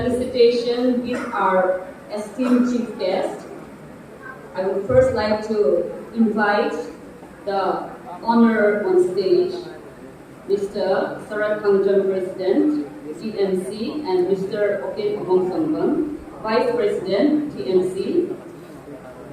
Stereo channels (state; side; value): identical; both; correlation 1.00